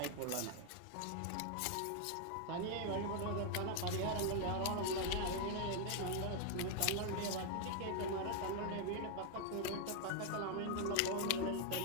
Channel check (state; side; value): different; both; correlation 0.00